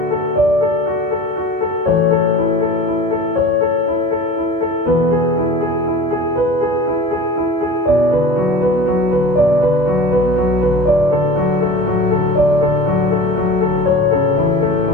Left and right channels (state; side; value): late; right; 1.9 ms